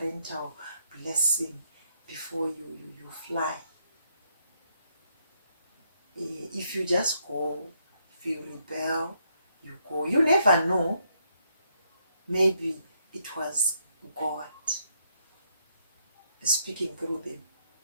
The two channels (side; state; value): both; inverted; correlation -0.74